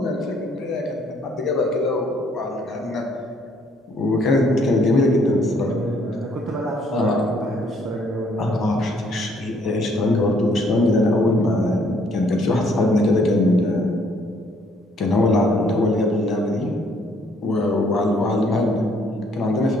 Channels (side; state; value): both; normal; correlation 0.65